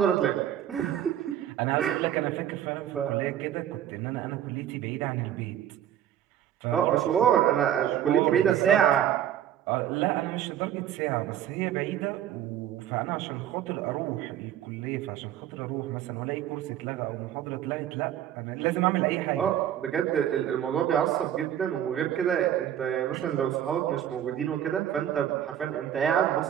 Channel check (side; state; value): left; quieter; 10.8 dB